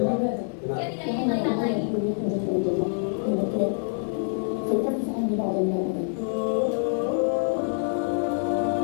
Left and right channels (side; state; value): right; silent; digital silence